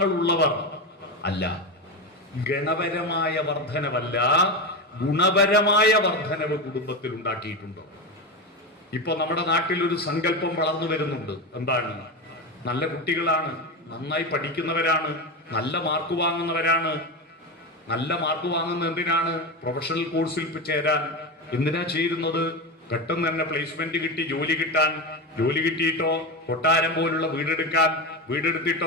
ഉള്ളവർ അല്ല. ഗണപരമായ വർധനവല്ല, ഗുണപരമായ വർധനവ് കുടുംബത്തിൽ ഉണ്ടാക്കിയിട്ടുണ്ടോ? ഇപ്പൊ നമ്മുടെ നാട്ടിൽ ഒരു സങ്കല്പം വളർന്നു വരുന്നുണ്ട്. എന്താണ്? നല്ല കുട്ടികളാണ്, നന്നായി പഠിക്കുന്നവരാണ്, നല്ല മാർക്ക് വാങ്ങുന്നവരാണ്. നല്ല മാർക്ക് വാങ്ങുന്നത് എന്തിനാണ്? പ്രൊഫഷണൽ കോഴ്സിൽ ചേരാൻ. എന്തിനാ ചേരുന്നത്? പെട്ടെന്ന് തന്നെ പ്ലേസ്മെന്റ് കിട്ടി ജോലി കിട്ടാൻ. ജോലി കിട്ടിയിട്ടോ കൊട്ടാരം പോലുള്ള വീടെടുക്കാൻ,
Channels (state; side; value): normal; both; correlation 0.17